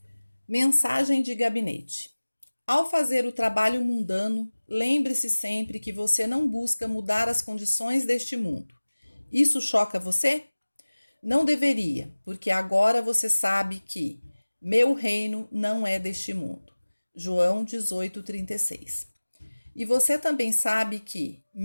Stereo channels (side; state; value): both; inverted; correlation -1.00